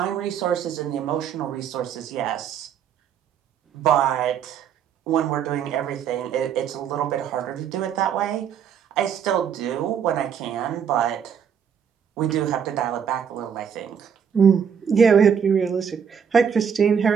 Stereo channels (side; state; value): left; quieter; 7.7 dB